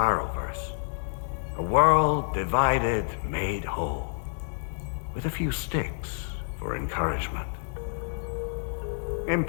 A world divided, made whole, with a few sticks for encouragement.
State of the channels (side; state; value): right; silent; 59 dB below the other